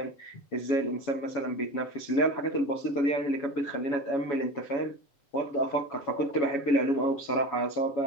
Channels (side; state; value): right; late; 7.1 ms